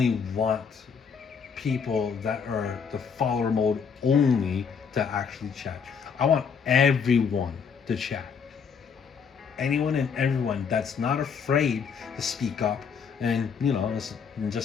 want people that are the follower mode only to actually chat. I want everyone to chat. Anyone and everyone that's not afraid to speak up and and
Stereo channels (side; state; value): right; quieter; 6.3 dB